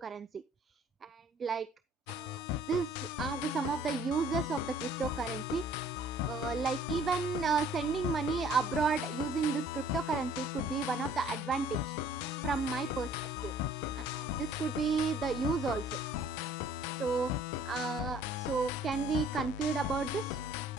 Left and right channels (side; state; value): both; normal; correlation 0.56